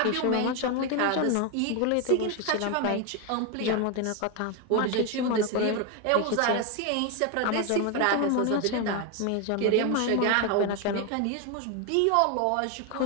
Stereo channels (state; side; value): different; both; correlation 0.01